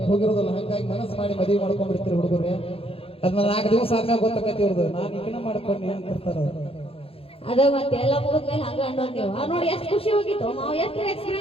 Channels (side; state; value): right; late; 0.27 ms